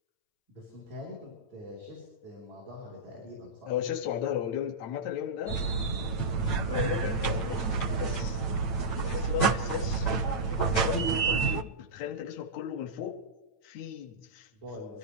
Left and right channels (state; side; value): late; right; 9.0 ms